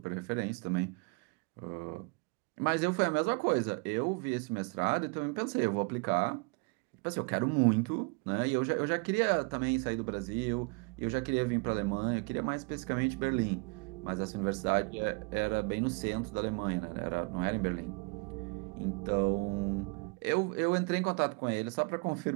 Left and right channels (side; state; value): left; quieter; 32.0 dB